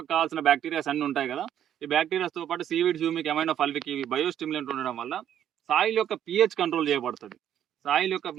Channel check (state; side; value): quieter; left; 10.4 dB